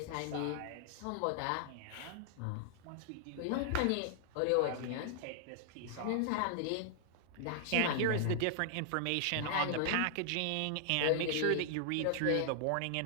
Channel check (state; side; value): different; both; correlation -0.01